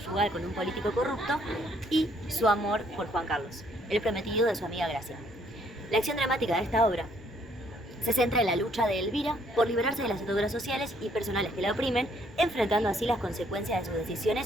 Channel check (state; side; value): normal; both; correlation 0.66